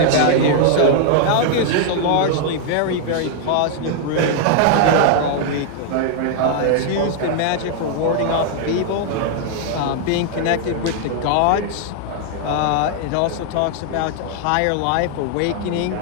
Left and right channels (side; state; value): both; different; correlation 0.00